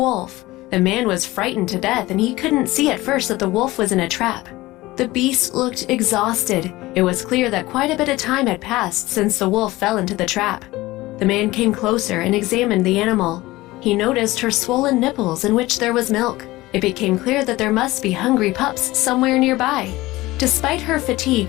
The man was frightened to death and he couldn't see at first that the wolf was in a trap. The beast looked exhausted. It was clear that quite a bit of time had passed since the wolf fell into the trap. The man came closer and examined the animal. He noticed her swollen nipples in which there was milk. It became clear that there must be hungry pups somewhere nearby. Despite her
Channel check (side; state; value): right; quieter; 18.9 dB